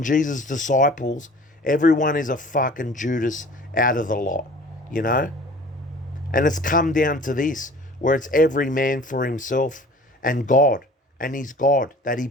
Jesus' disciples. Everyone is a fucking Judas out of the lot, you know? And it's come down to this, where it's every man for himself and God, and his God that he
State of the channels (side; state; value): both; normal; correlation 0.45